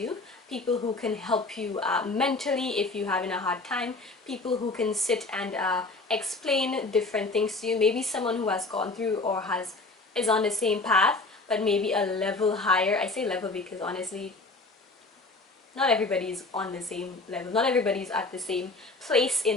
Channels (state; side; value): quieter; right; 3.4 dB